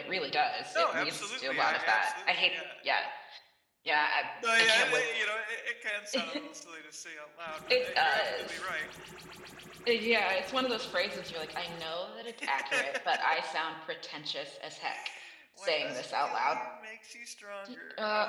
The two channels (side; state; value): both; identical; correlation 1.00